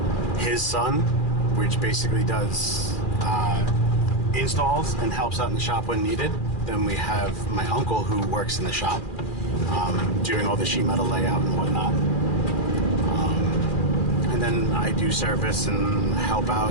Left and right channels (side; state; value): right; late; 2.4 ms